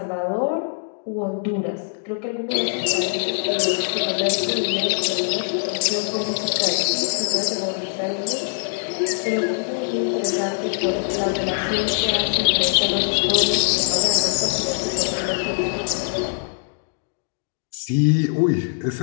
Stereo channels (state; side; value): silent; right; digital silence